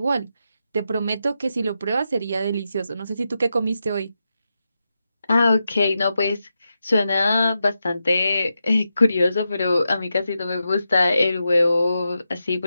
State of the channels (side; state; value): both; inverted; correlation -0.88